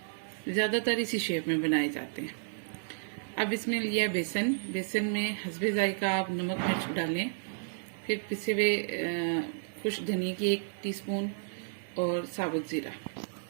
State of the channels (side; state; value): left; silent; digital silence